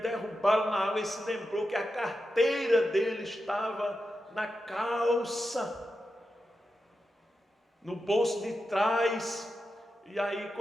na água, e se lembrou que a carteira dele estava na calça, no bolso de trás. E aí,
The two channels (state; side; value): normal; both; correlation 0.89